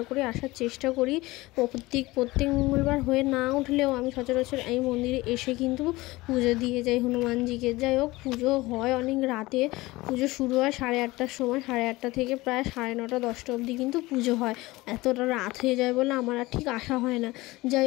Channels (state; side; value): quieter; right; 20.3 dB